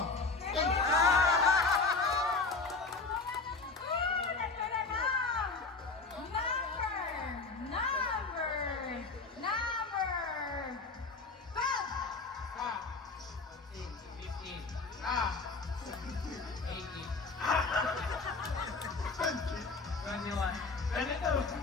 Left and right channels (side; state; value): right; quieter; 4.0 dB